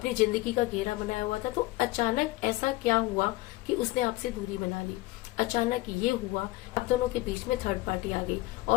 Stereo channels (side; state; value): right; quieter; 19.7 dB